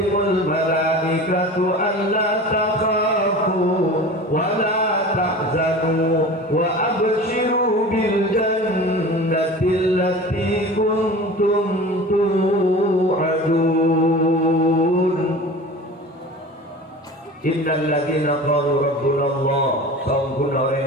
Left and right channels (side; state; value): both; normal; correlation 0.36